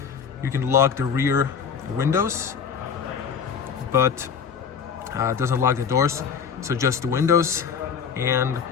You can lock the rear windows, but it doesn't lock the doors, so just the windows. And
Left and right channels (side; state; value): right; quieter; 6.8 dB